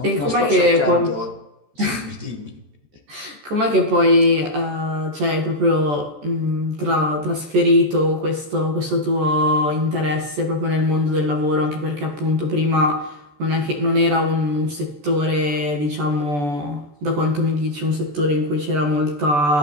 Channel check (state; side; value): late; left; 14 ms